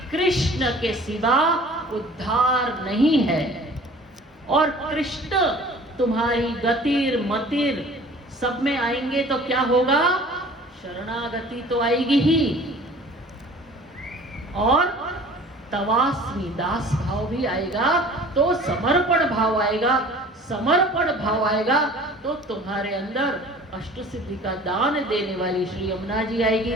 कृष्ण के सिवा उद्धार नहीं है। और कृष्ण तुम्हारी गतिर मतिर सब में आएंगे तो क्या होगा? शरणागति तो आएगी ही, और तवास्मी दास भाव भी आएगा, तो समर्पण भाव आएगा। समर्पण भाव आएगा तो तुम्हारे अंदर अष्ट सिद्धि का दान देने वाली श्री यमुना जी आएगी,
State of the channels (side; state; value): both; normal; correlation 0.47